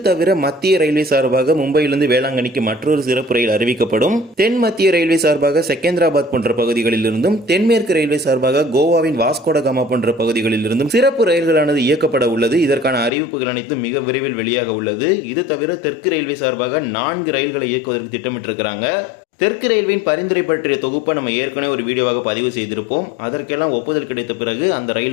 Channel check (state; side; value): drops out; right; at 13.1 s